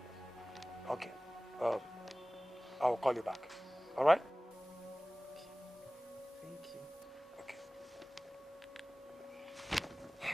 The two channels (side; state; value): both; normal; correlation 0.98